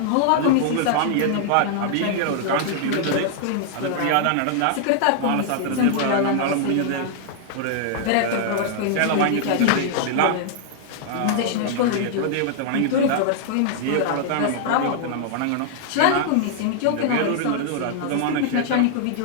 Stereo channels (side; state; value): both; different; correlation -0.01